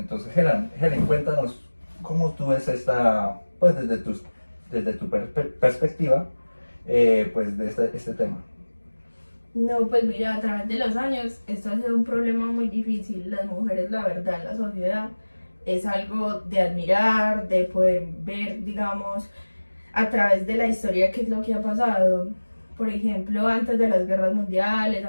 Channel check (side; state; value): both; inverted; correlation -1.00